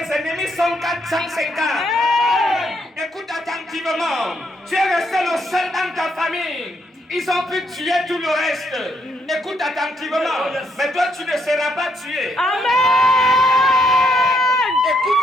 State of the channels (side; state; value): both; normal; correlation 0.75